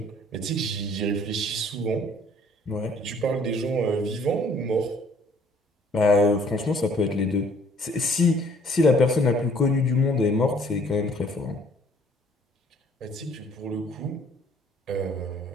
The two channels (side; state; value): both; normal; correlation 0.59